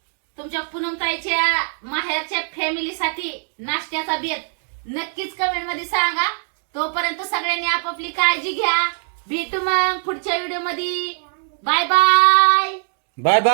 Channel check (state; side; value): silent; left; 58 dB below the other